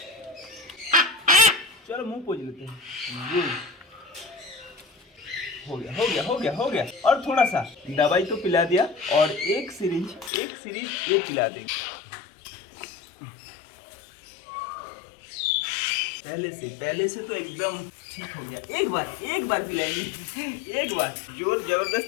चलो मुंह पोंछ लेते हैं। हो गया। और थोड़ा सा दवाई तो पिला दिया और एक सिरिंज ये पिला देंगे। पहले से तो एकदम ठीक हो गया। एक बार पिलाएंगे, एक बार जोर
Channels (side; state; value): right; drops out; at 10.3 s